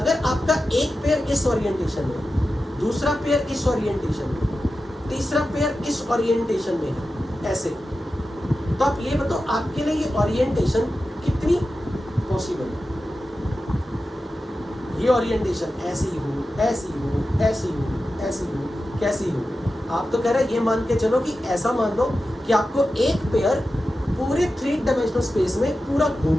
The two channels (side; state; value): both; normal; correlation 0.92